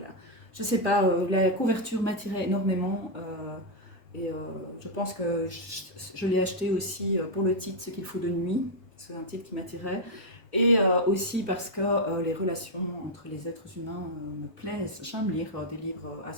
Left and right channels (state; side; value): normal; both; correlation -0.02